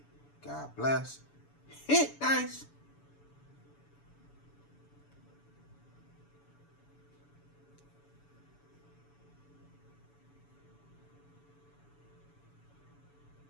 God bless. Hit dice.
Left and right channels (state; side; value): late; right; 7.0 ms